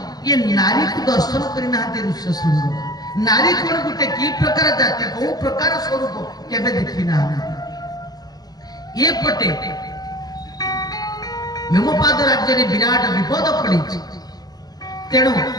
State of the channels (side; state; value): right; late; 0.19 ms